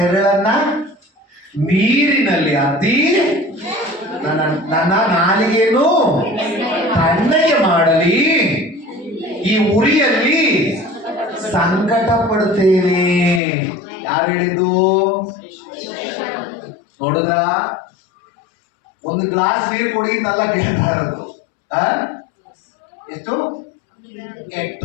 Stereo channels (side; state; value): right; drops out; at 13.4 s